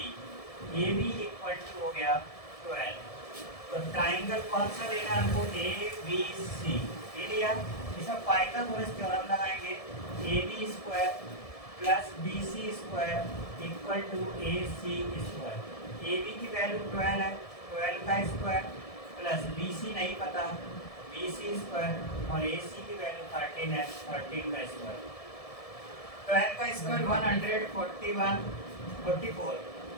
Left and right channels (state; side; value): late; right; 1.7 ms